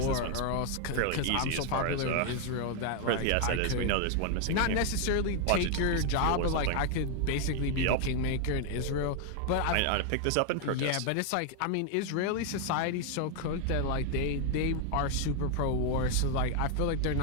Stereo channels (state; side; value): different; both; correlation 0.00